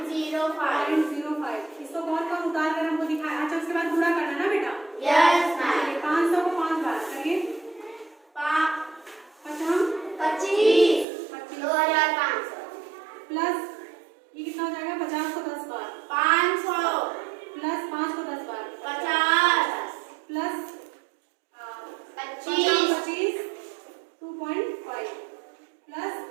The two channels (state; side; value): drops out; left; at 11.1 s